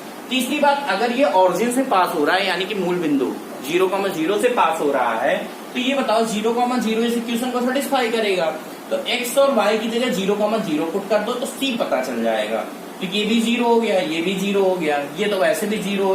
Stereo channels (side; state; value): both; identical; correlation 1.00